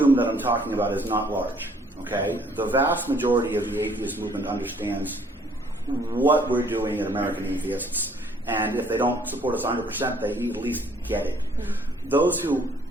that I'm talking about is not large. Okay, the vast majority of the atheist movement understands what we're doing at American Atheists, and if they don't support us 100%, they at least get it. Those who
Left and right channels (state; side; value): normal; both; correlation 0.61